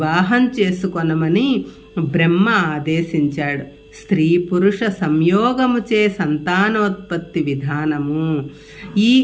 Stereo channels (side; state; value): both; identical; correlation 1.00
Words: చేసుకొనమని బ్రహ్మ ఆదేశించాడు. స్త్రీ పురుష సంయోగముచే సంతానోత్పత్తి విధానము ఈ